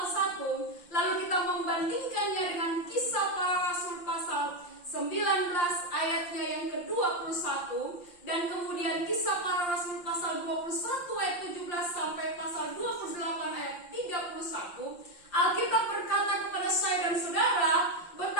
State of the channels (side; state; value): right; late; 5.7 ms